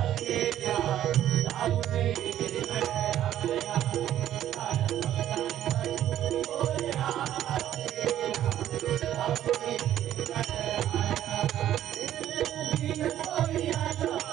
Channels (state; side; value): quieter; left; 11.9 dB